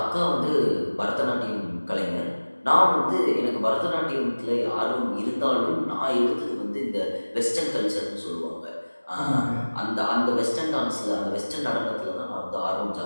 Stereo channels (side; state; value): both; inverted; correlation -1.00